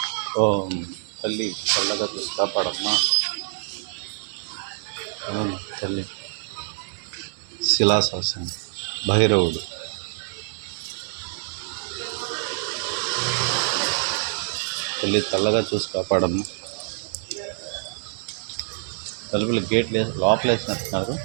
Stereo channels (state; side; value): silent; left; digital silence